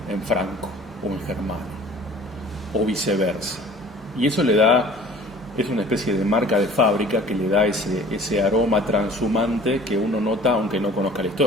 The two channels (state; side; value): normal; both; correlation 0.47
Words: en franco o en germano, o viceversa. Y eso le da, es una especie de marca de fábrica que le da ese aroma transhumante que uno nota aunque no conozca la